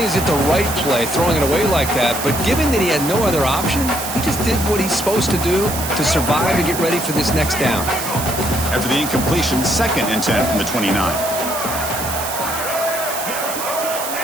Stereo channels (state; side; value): noise; right; hiss, 6 dB below the sound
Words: is it the right play, throwing it away like that, but given that he had no other option, he just did what he's supposed to do to survive and get ready for this next down. After the incompletion, 2nd and 10 from the 29.